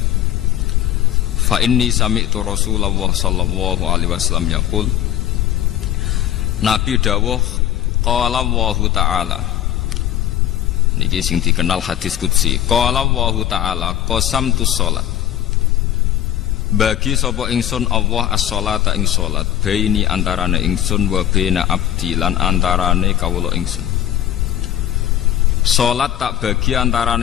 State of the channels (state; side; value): quieter; right; 11.8 dB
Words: fa inni sami'tu Rasulullah sallallahu alaihi wasallam yaqul. Nabi dawuh qala Allahu ta'ala, niki sing dikenal hadis qudsi, qala Allahu ta'ala qasamtu sholat, bagi sapa ingsun Allah as-sholata ing sholat, baini antarane ingsun wa baina abdi lan antarane kawula ingsun. Sholat tak bagi